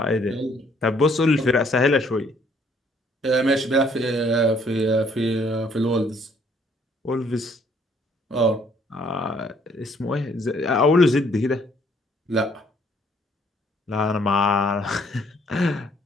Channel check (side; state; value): both; normal; correlation 0.64